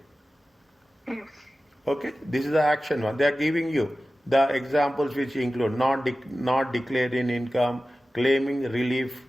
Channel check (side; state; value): both; normal; correlation 0.95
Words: Yes. Okay, this is the action one. They are giving you the examples which include not declaring income, claiming relief